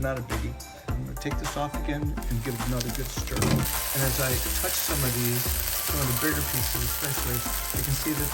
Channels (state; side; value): identical; both; correlation 1.00